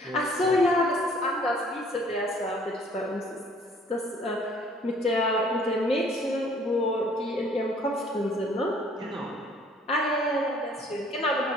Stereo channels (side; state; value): both; normal; correlation 0.57